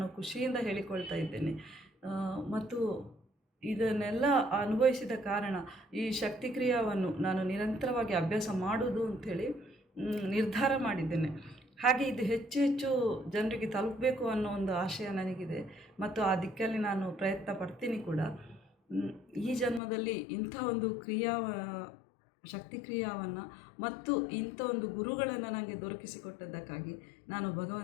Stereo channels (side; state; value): right; drops out; at 19.8 s